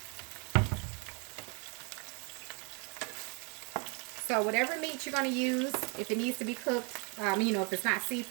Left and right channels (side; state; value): left; quieter; 33.9 dB